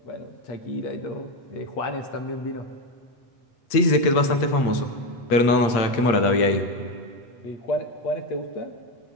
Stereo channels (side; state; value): right; late; 8.7 ms